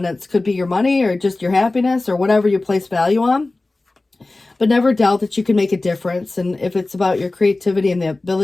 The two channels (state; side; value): quieter; right; 3.1 dB